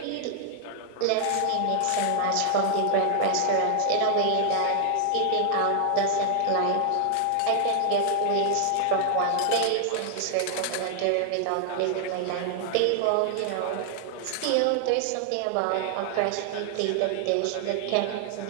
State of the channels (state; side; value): different; both; correlation 0.00